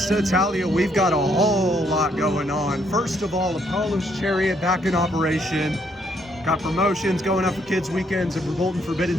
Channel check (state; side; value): normal; both; correlation 0.71